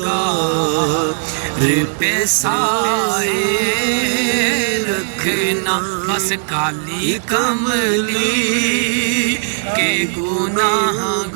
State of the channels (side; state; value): left; silent; digital silence